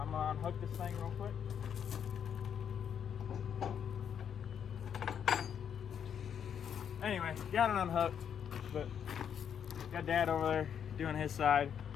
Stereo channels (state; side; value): quieter; right; 8.2 dB